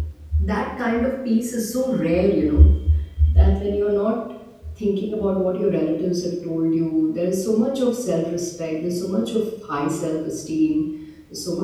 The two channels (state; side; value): identical; both; correlation 1.00